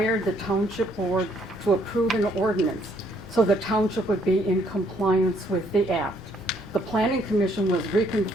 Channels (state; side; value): normal; both; correlation 0.67